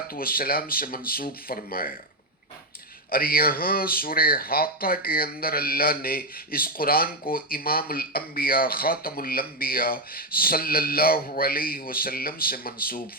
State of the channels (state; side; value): normal; both; correlation 0.06